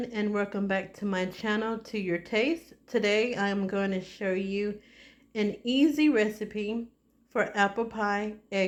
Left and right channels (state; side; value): identical; both; correlation 1.00